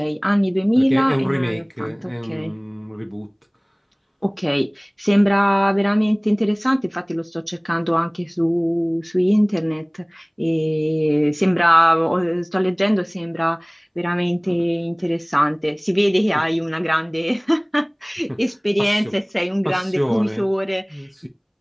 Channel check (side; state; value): both; identical; correlation 1.00